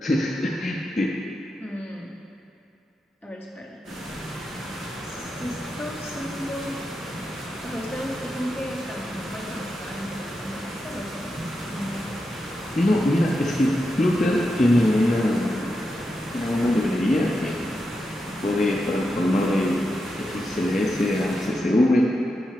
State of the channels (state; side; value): normal; both; correlation 0.87